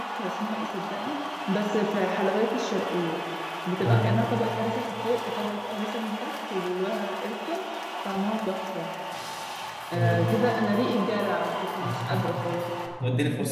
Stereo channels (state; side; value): identical; both; correlation 1.00